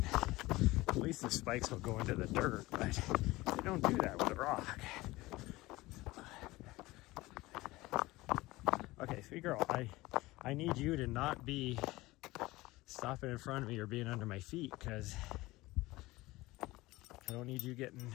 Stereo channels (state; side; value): quieter; right; 19.7 dB